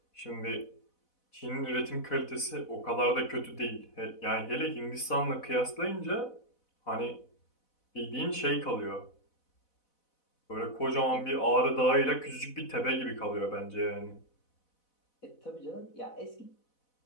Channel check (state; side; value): late; right; 4.0 ms